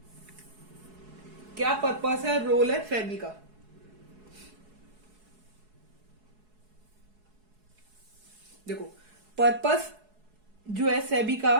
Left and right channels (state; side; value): late; left; 4.7 ms